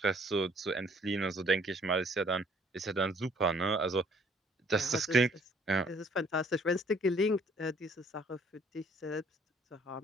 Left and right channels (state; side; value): normal; both; correlation 0.60